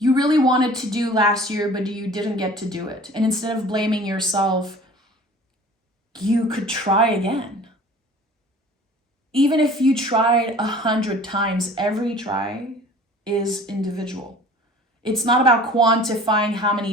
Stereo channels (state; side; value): normal; both; correlation 0.46